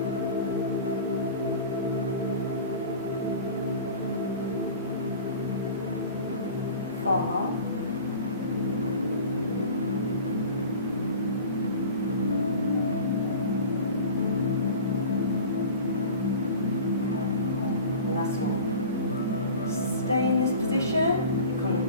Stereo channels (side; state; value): both; inverted; correlation -0.38